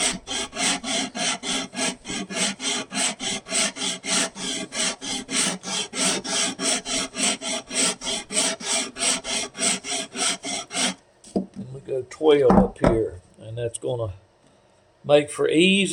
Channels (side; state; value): both; identical; correlation 1.00